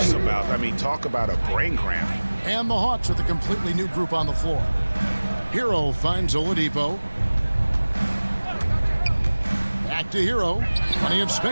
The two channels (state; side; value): inverted; both; correlation -1.00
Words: about. I mean, talk about a brain cramp. And the Hawks with a completely new group on the floor. Hero finds Oladipo. Back to Hero. Plenty of